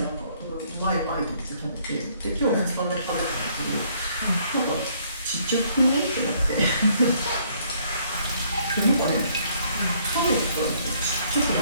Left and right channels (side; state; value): both; inverted; correlation -0.65